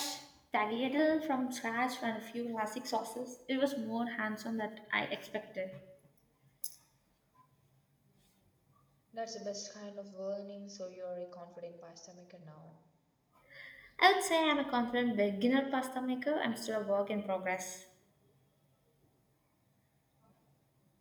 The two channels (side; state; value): both; identical; correlation 1.00